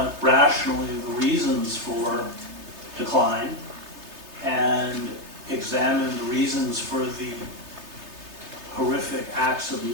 rationally the reasons for decline and examine the reasons for the horrific acts of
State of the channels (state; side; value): late; left; 3.3 ms